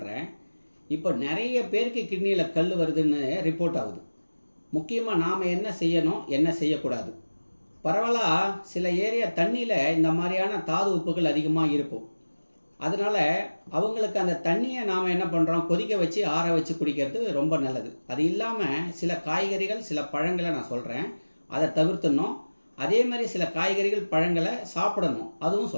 இப்போ நிறைய பேருக்கு கிட்னியில் கல் வருதுன்னு ரிப்போர்ட் ஆகுது. முக்கியமாக நாம் என்ன செய்யணும், என்ன செய்யக்கூடாது. பரவலாக சில ஏரியா தண்ணியில் இந்த மாதிரியான தாது உப்புகள் அதிகமாக இருக்கும். அதனால் அவங்களுக்கு அந்த தண்ணியை நாம் என்ன பண்ணுறோம், கொதிக்க வச்சு ஆற வச்சு குடிக்கிறது ரொம்ப நல்லது. அது இல்லாமல் சில காய்கறிகள், சில பழங்களை நான் சொல்கிறேன், அதை தவிர்த்துடணும். அதே மாதிரி சில காய்கறிகள், பழங்களை சாப்பிடணும், அதுவும்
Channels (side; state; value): both; inverted; correlation -1.00